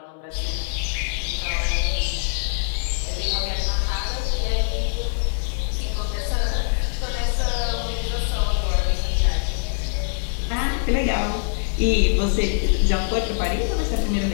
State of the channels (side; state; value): right; silent; 63 dB below the other